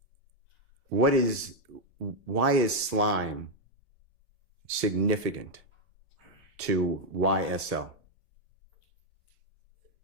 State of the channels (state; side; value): normal; both; correlation 0.01